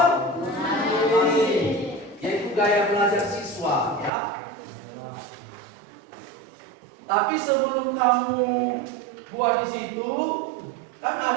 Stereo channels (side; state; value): left; drops out; at 4.1 s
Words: yaitu gaya belajar siswa ya. Tapi sebelum kamu buat di situ, kan